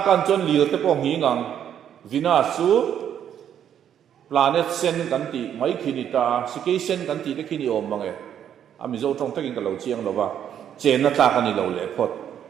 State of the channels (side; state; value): left; quieter; 9.5 dB